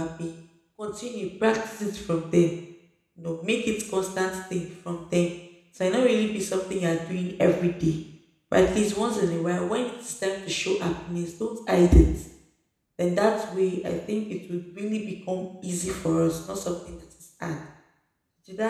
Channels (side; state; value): both; identical; correlation 1.00